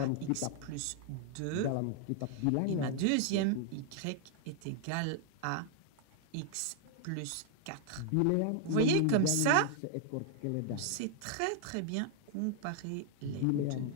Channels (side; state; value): both; different; correlation 0.00